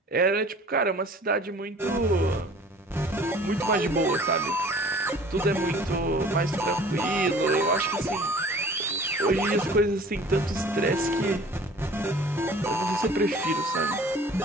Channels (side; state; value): both; normal; correlation 0.48